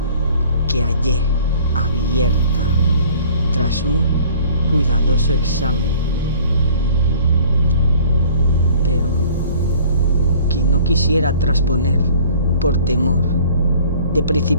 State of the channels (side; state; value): both; inverted; correlation -0.51